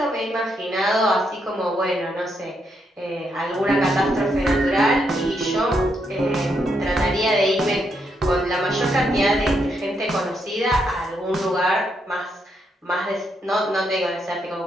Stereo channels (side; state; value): both; normal; correlation 0.78